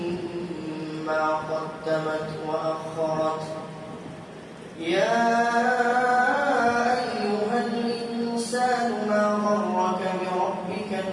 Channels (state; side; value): identical; both; correlation 1.00